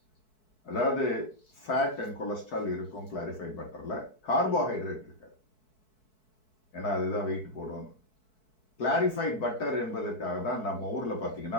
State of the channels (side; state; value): right; late; 4.6 ms